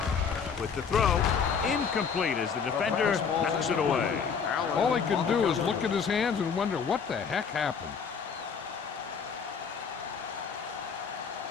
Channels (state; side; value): quieter; right; 6.3 dB